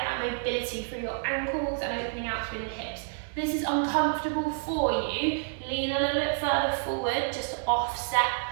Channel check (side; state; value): left; silent; 59 dB below the other